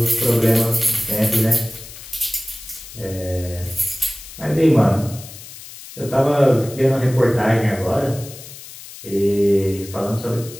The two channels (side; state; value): left; noise; hiss, 15 dB below the sound